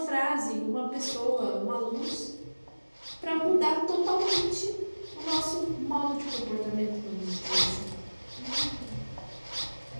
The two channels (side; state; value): both; inverted; correlation -1.00